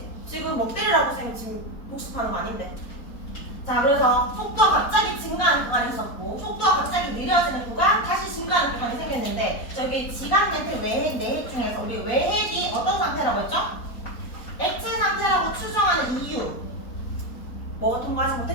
지금 뭐 때리라고 선생님 지금 복습하는 거 아닌데. 자, 그래서 속도가 갑자기 증가하는 구간이 있었고 속도가 갑자기 느려지는 구간, 다시 증가하는 구간이 생겼는데 저기 지각 멘틀 외핵, 내핵 중에서 우리 외핵이 어떤 상태라고 했죠? 액체 상태라고 추정하는 이유 뭐가 통과하지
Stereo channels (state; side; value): late; right; 4.1 ms